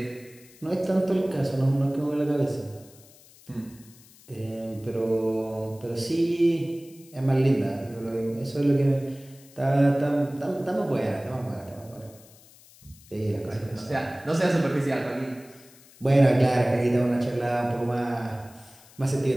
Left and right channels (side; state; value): left; noise; hiss, 24 dB below the sound